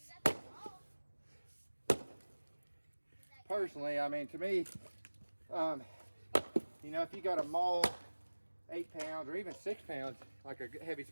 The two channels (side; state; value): both; inverted; correlation -1.00